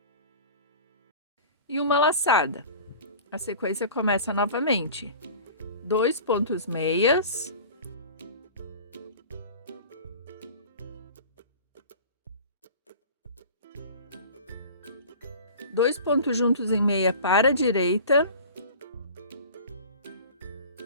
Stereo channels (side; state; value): both; inverted; correlation -0.40